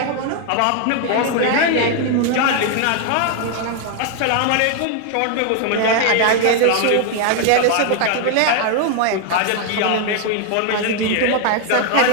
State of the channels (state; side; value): different; both; correlation 0.00